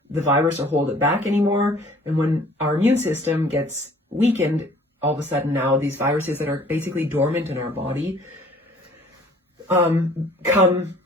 the virus or hold it back anymore. And when our immune system gets weakened, all of a sudden now these viruses that are basically dormant in our body come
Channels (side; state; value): both; normal; correlation 0.53